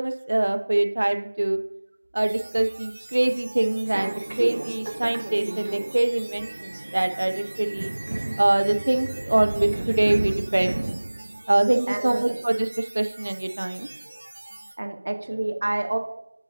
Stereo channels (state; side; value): inverted; both; correlation -1.00